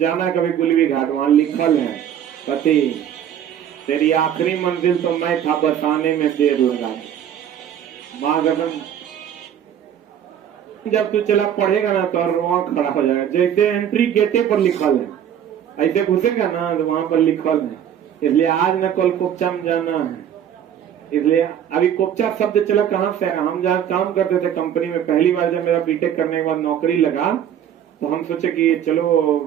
कभी गुलवी घाट, वहां लिखल है पति तेरी आखिरी मंजिल तो मैं था, बसाने में देर लगा। माँ कसम, जब तू चला पढ़ेगा ना तो रोआ खड़ा हो जाएगा। जैसे एंट्री गेटे पर लिखल है, ऐसे घुसेगा ना तो वहां पर लिखल है। इसलिए आज न कल कोपचा में जाना है। इसलिए अभी कोपचा शब्द चला कहाँ से? हम जहाँ काम करते थे कंपनी में, पहली बार जब मेरा बीटेक करने के बाद नौकरी लगा तो हम सोचे कि चलो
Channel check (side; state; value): left; quieter; 9.7 dB